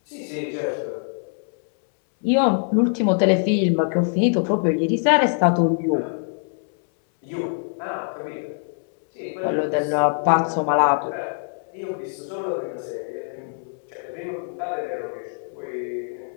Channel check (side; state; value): right; silent; 63 dB below the other